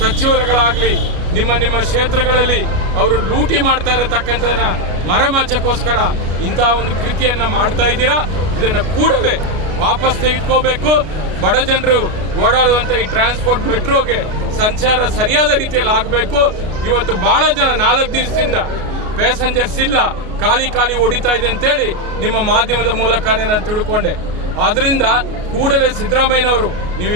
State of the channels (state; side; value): late; left; 33 ms